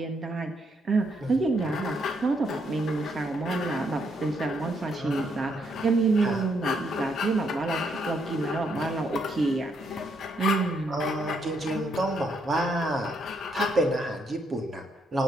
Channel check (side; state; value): both; normal; correlation 0.75